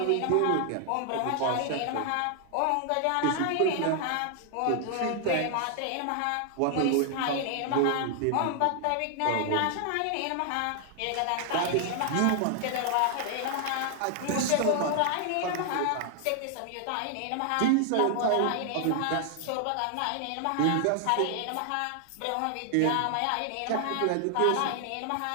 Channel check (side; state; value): both; different; correlation 0.00